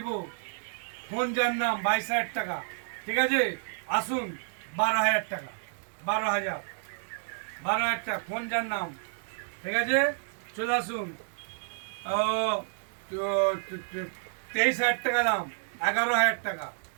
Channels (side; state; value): left; silent; digital silence